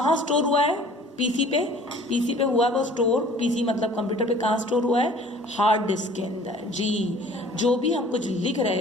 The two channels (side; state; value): both; normal; correlation 0.50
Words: स्टोर हुआ है, पीसी पे हुआ है वो स्टोर। पीसी मतलब कंप्यूटर पे कहाँ स्टोर हुआ है, हार्ड डिस्क के अंदर। जी, जो भी हम कुछ लिख